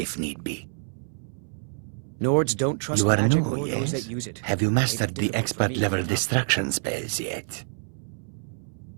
need be. Nords don't trust You are magic new, or those yes? that use it. Have you mastered Maybe the difficult for me expert-level to- distraction spells yet?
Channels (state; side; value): silent; left; 60 dB below the other